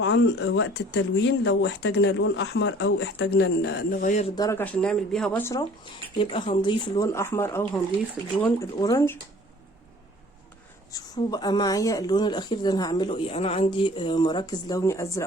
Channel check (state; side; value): normal; both; correlation 0.50